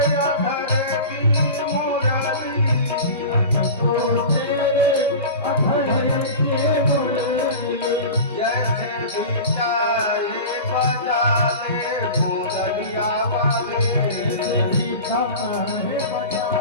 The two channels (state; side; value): inverted; both; correlation -0.32